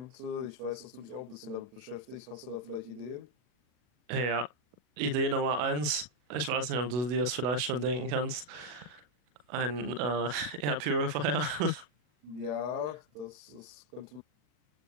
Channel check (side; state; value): left; late; 40 ms